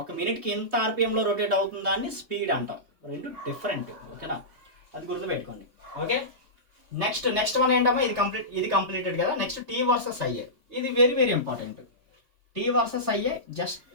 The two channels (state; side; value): late; left; 3.3 ms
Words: ఒక మినిట్కి ఎంత ఆర్పిఎంలో రొటేట్ అవుతుందా అని స్పీడ్ అంటాం. రెండు డిఫరెంట్. ఓకేనా? అది గుర్తుపెట్టుకోండి. ఓకే, నెక్స్ట్ వన్ ఏంటమ్మా, ఇది కంప్లీటెడ్ కదా. Next T versus IA. ఇది very important. T versus IA just